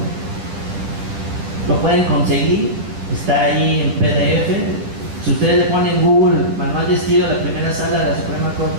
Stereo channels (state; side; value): late; left; 10 ms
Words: Lo pueden conseguir, está ahí en PDF. Si ustedes le ponen en Google manual de estilo de la primera sala de la Suprema